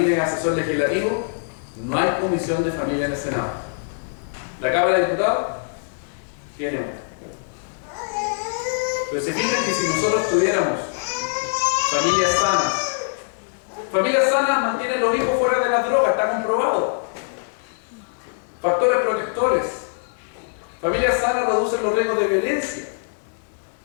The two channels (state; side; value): silent; right; digital silence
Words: es asesor legislativo, no hay Comisión de Familia en el Senado. La Cámara de Diputados tiene una. Pero se fijan que si nosotros tuviéramos familias sanas mantienen los hijos fuera de las drogas, está comprobado. Factores protectores. Familias sanas reducen los riesgos de violencia.